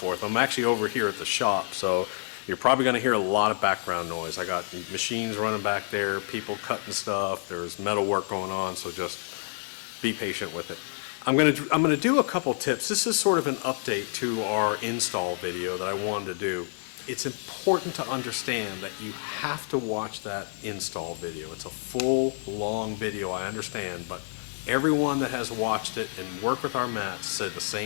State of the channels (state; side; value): silent; right; digital silence